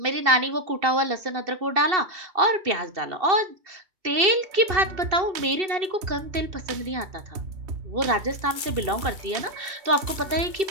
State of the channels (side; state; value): left; late; 2.7 ms